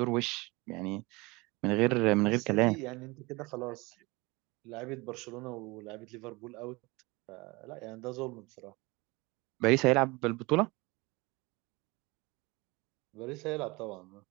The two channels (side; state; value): left; quieter; 24.3 dB